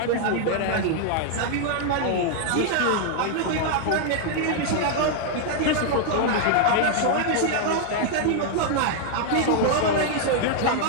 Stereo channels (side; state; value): both; different; correlation 0.00